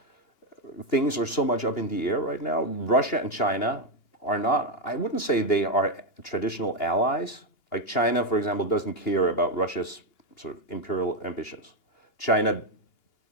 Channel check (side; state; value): right; late; 2.8 ms